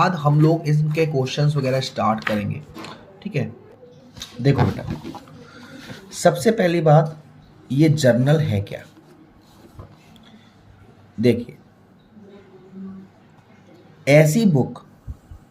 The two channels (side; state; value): both; identical; correlation 1.00